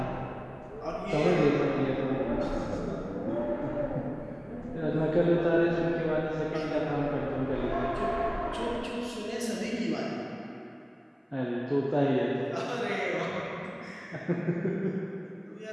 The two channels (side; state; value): both; identical; correlation 1.00